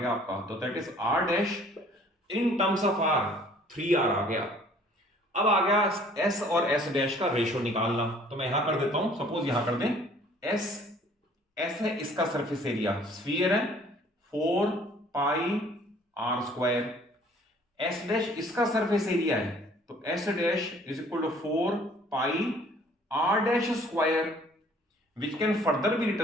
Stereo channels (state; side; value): normal; both; correlation 0.55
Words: आपका। तो that is r' in terms of r 3r आ गया। अब आ गया s और s' का रेशियो निकालना, तो मैं यहां कर देता हूं, सपोज यहां कर दें s है इसका सरफेस एरिया, स्फीयर है 4 पाई r², s' इसका सरफेस एरिया है, तो s' is equal to 4 pi r'², which can further be